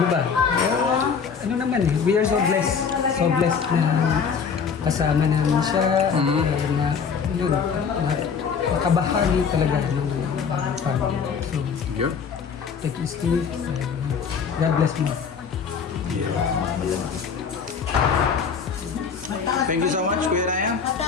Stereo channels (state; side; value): quieter; right; 6.2 dB